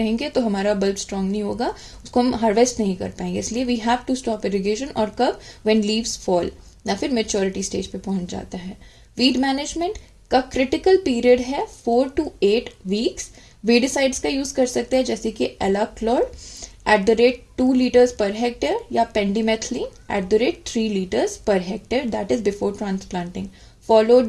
तो हमारा बल्ब स्ट्रांग नहीं होगा, उसको हम हार्वेस्ट नहीं कर पाएंगे, इसलिए we have to stop irrigation. और कब? व्हेन लीव्स फॉल या फिर मैच्योरिटी स्टेज पे पहुंच जाता है. वीड मैनेजमेंट का क्रिटिकल पीरियड है 4 to 8 weeks. वीडिसाइड्स का यूज कर सकते हैं जैसे कि एलाक्लोर @2 liters per hectare या पेंडिमेथलिन @3 liters per hectare, that is before transplanting,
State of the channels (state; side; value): identical; both; correlation 1.00